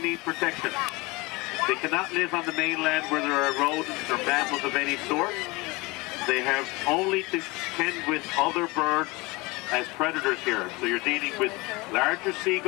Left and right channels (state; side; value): quieter; right; 24.1 dB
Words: protection. They cannot live on the mainland where there are rodents or mammals of any sort. They have only to contend with other birds as predators here. So you're dealing with larger